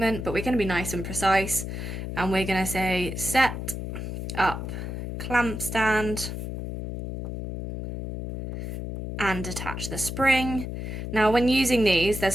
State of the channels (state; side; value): noise; left; hum, 6 dB below the sound